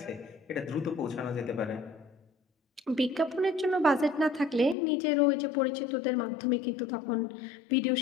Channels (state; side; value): drops out; right; at 4.8 s